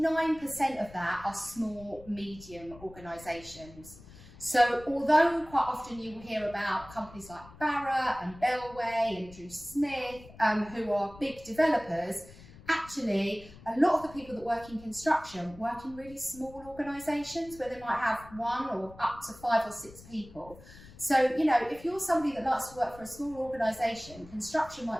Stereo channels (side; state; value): left; noise; rumble, 20 dB below the sound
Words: of that are small, medium organisations. So although quite often you will hear about companies like Barratt and Bellway and Drew Smith, who are big developers, actually a lot of the people that work in construction work in really small organisations where they might have one or up to 5 or 6 people. So, you know, if you're somebody that likes to work for a small organisation, construction